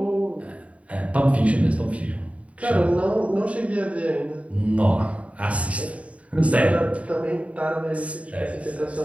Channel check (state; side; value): late; left; 0.066 ms